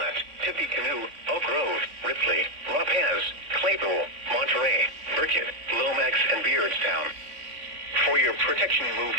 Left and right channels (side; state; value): left; late; 3.5 ms